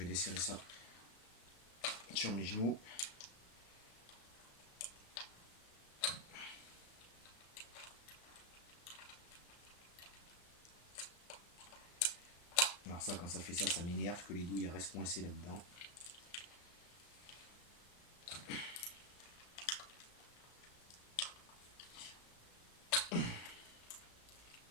desserrer ça sur mes genoux. Alors ça, quand ça fait ça, ça m'énerve que les douilles restent coincées là-dedans.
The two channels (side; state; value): right; late; 34 ms